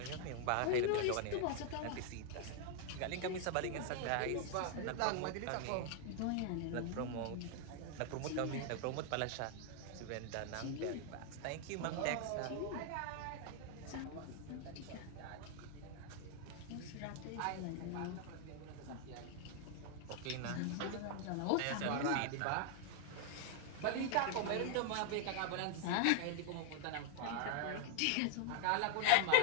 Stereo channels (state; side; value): different; both; correlation 0.00